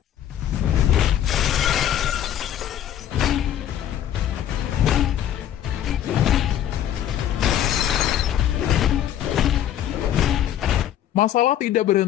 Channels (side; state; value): right; quieter; 10.9 dB